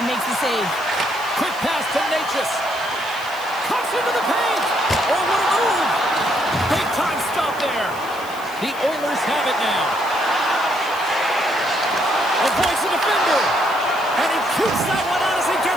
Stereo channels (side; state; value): left; noise; hiss, 19 dB below the sound